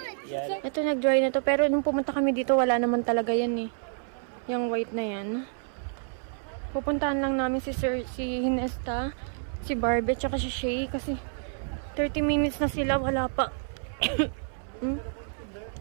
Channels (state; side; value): silent; left; 59 dB below the other